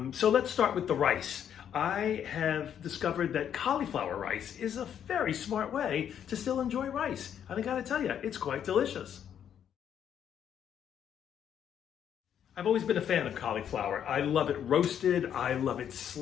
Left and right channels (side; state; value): right; quieter; 9.1 dB